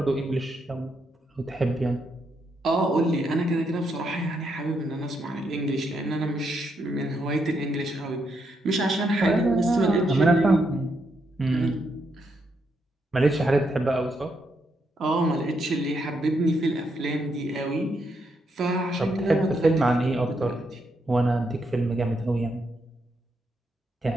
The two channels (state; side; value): normal; both; correlation 0.79